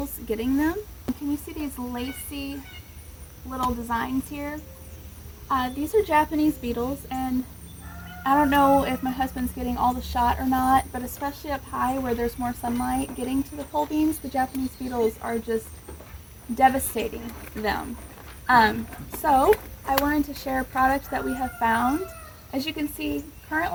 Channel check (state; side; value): identical; both; correlation 1.00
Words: getting them. Can you see these lacy little designs here? These are Japanese beetles, and I don't know if my husband's getting all the shot or not, but especially up high where there's more sunlight getting to the pole beans, the Japanese beetles are just devastating them. So I wanted to share a product that we have found. As you can see,